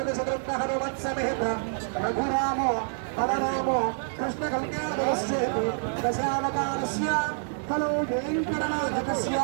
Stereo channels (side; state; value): left; silent; digital silence